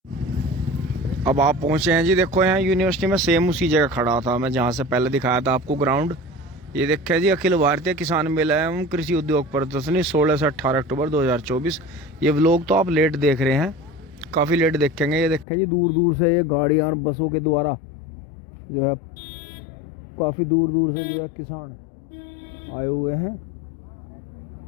अब आप पहुंचे हैं जी, देखो यहाँ यूनिवर्सिटी में सेम उसी जगह खड़ा था मैं जहाँ से पहले दिखाया था आपको ग्राउंड। ये देखा जी अखिल भारतीय किसान मेला एवं कृषि उद्योग प्रदर्शनी 16 से 18 अक्टूबर 2024। ये व्लॉग तो आप लेट देख रहे हैं, काफ़ी लेट देखेंगे। ये देखें जी दूर दूर से ये गाड़ियाँ और बसों के द्वारा जो है काफ़ी दूर दूर से जो है किसान आए हुए हैं।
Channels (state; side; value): drops out; right; at 15.5 s